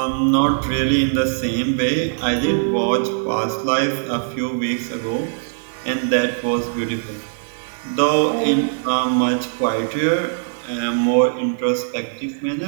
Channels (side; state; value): left; silent; digital silence